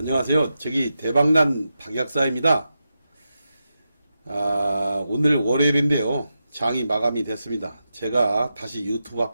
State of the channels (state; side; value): inverted; both; correlation -0.89